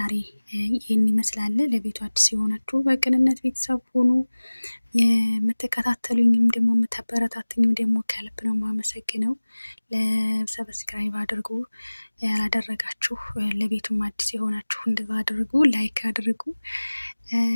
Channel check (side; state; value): both; inverted; correlation -1.00